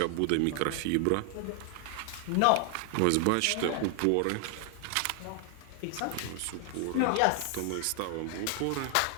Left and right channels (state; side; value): different; both; correlation 0.00